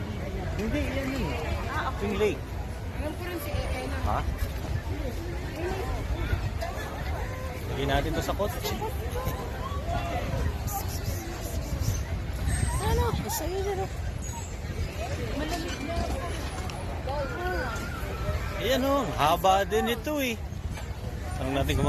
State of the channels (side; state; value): both; identical; correlation 1.00